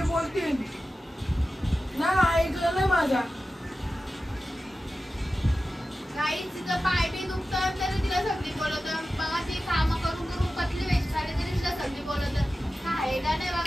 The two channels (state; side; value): normal; both; correlation 0.94